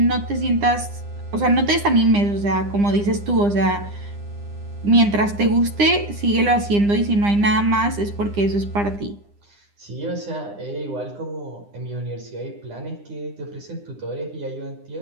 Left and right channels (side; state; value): left; late; 9.9 ms